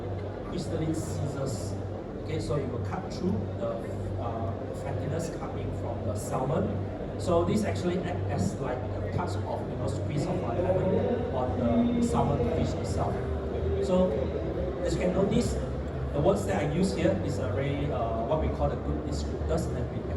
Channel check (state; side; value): identical; both; correlation 1.00